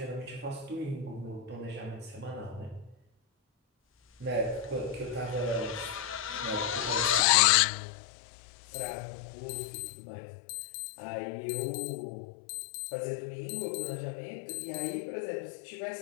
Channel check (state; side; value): drops out; right; at 7.2 s